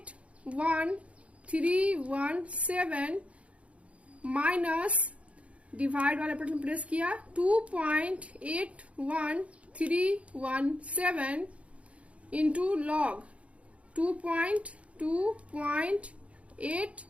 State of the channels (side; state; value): left; late; 0.063 ms